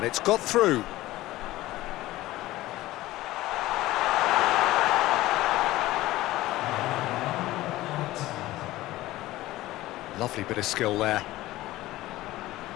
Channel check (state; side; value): quieter; right; 16.9 dB